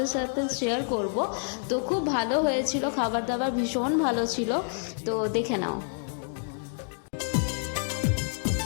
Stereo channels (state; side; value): silent; right; 59 dB below the other